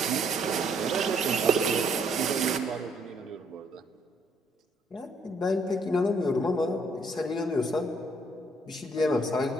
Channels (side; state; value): both; normal; correlation 0.68